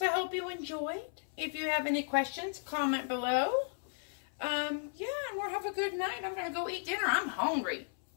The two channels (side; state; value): right; silent; 55 dB below the other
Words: I hope you enjoyed. If you have any questions, comment below. Yeah, and we'll have a good night. I'm going to go eat dinner. I'm hungry.